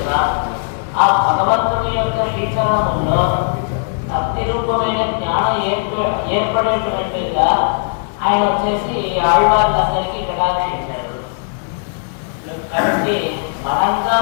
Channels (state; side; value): silent; right; digital silence